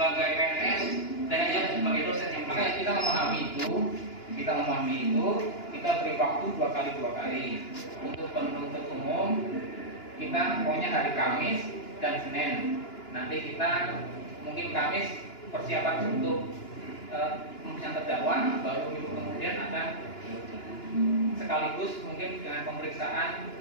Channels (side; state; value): right; late; 2.9 ms